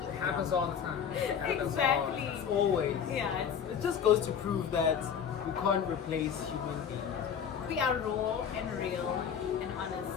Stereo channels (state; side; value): quieter; right; 7.7 dB